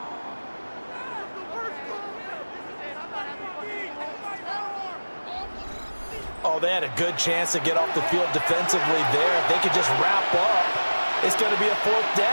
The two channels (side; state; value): both; inverted; correlation -1.00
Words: Oh, they had a good chance to get off the field defensively there. If they could just wrap up, it's going to be a 4th